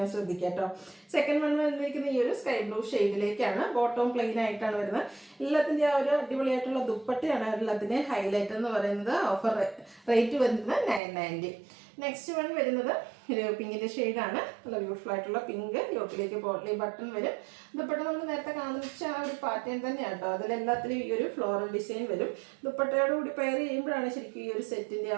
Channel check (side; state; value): left; drops out; at 11.0 s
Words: ശ്രദ്ധിക്കാം കേട്ടോ. സെക്കൻഡ് വൺ വന്നിരിക്കുന്ന ഈ ഒരു സ്കൈ ബ്ലൂ ഷെയ്ഡിലേക്കാണ്. ബോട്ടം പ്ലെയിൻ ആയിട്ടാണ് വരുന്നത്. എല്ലാത്തിൻ്റെ ആ ഒരു അടിപൊളിയായിട്ടുള്ള ദുപ്പട്ടയാണ് എല്ലാത്തിൻ്റെ ഹൈലൈറ്റ് എന്ന് പറയുന്നത്. ഓഫർ റേറ്റ് വരുന്നത് 990. നെക്സ്റ്റ് വൺ വരുന്നത് ഒരു പിങ്കിൻ്റെ ഷെയ്ഡാണ്. നല്ല ബ്യൂട്ടിഫുൾ ആയിട്ടുള്ള പിങ്ക്. യോക്കിലേക്ക് പോട്ട്ലി ബട്ടൺ വരും. ദുപ്പട്ട നമ്മൾ നേരത്തെ കാണിച്ച ആ ഒരു പാറ്റേൺ തന്നെയാണ് കേട്ടോ. അതിലെല്ലാത്തിലും ഈ ഒരു ഫ്ലോറൽ ഡിസൈൻ വരും. ദുപ്പട്ടയോട് കൂടി പെയർ ചെയ്യുമ്പോഴാണ് ശരിക്കും ഈ ഒരു സെറ്റിൻ്റെ